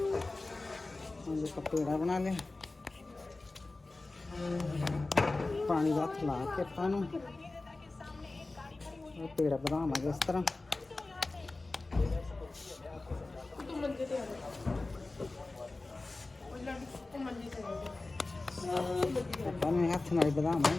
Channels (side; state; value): right; quieter; 3.2 dB